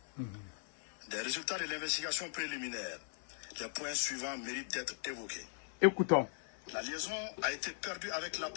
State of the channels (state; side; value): silent; right; 52 dB below the other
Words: Des résultats de l'investigation préliminaire, les points suivants méritent d'être évoqués. Écoutons. La liaison a été perdue avec